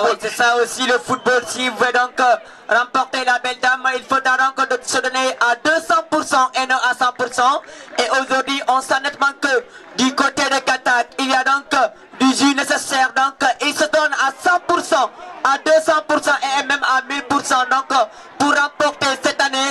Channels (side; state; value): both; identical; correlation 1.00